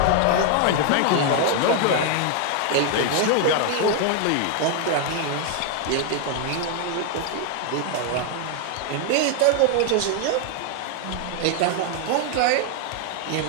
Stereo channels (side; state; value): both; different; correlation 0.00